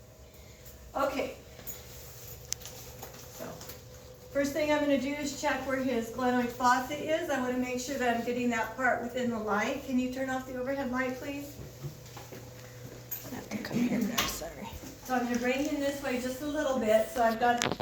Okay. So, first thing I'm gonna do is check where his glenoid fossa is. I wanna make sure that I'm getting that part within the light. Can you turn off the overhead light, please? Come here, no, sorry. So I'm gonna bring him this way just a little bit, so I've got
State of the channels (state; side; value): identical; both; correlation 1.00